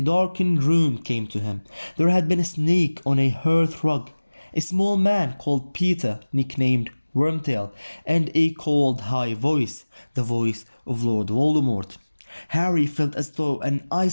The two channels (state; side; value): inverted; both; correlation -1.00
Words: darkened room came to him. There had been a snake on a hearth rug, a small man called Peter, nicknamed Wormtail, and a cold high voice, the voice of Lord Voldemort. Harry felt as though an